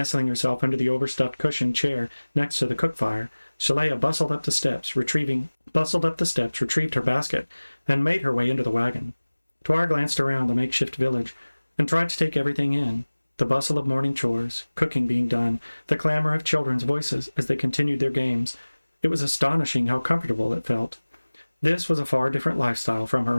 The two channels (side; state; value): both; inverted; correlation -1.00